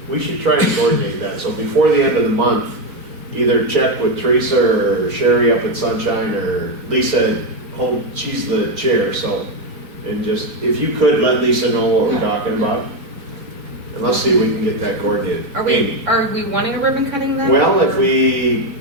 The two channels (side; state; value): left; late; 3.6 ms